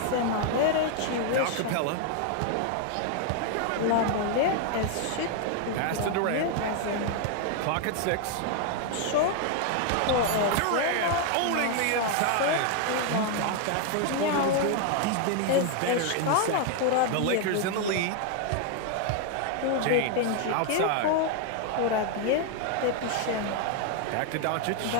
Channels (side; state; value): both; different; correlation 0.00